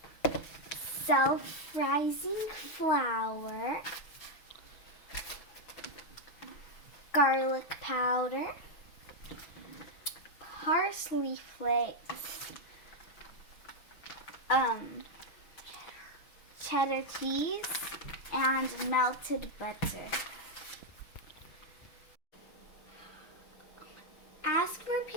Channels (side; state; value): right; late; 6.3 ms